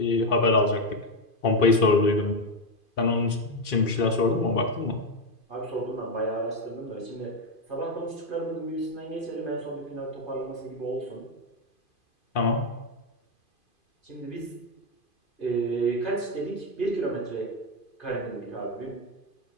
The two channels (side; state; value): right; late; 2.5 ms